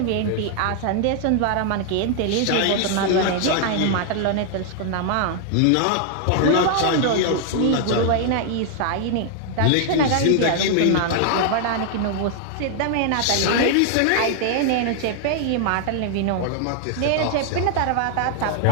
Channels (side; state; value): both; different; correlation 0.00